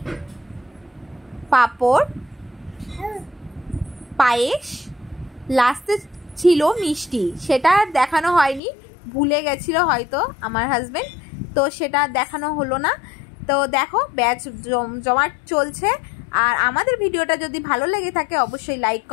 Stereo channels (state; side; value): drops out; right; at 8.6 s